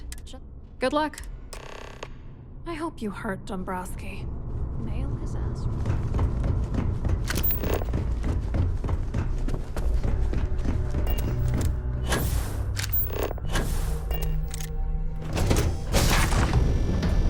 good luck. I hope you hurt Dombrowski. Nail his ass.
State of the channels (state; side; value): identical; both; correlation 1.00